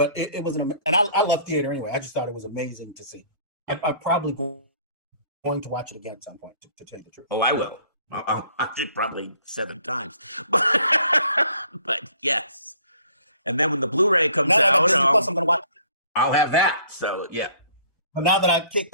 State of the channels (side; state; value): both; inverted; correlation -0.57